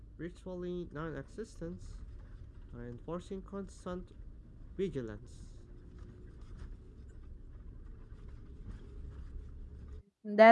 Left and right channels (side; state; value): both; identical; correlation 1.00